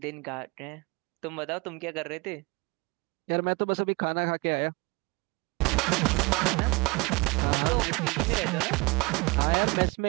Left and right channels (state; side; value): quieter; left; 26.3 dB